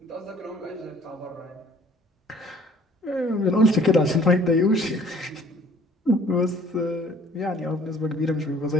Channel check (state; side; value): normal; both; correlation 0.55